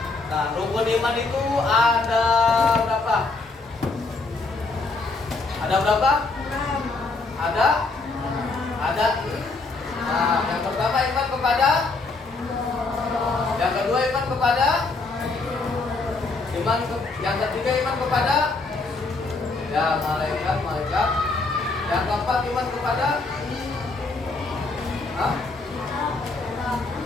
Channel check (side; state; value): right; quieter; 3.6 dB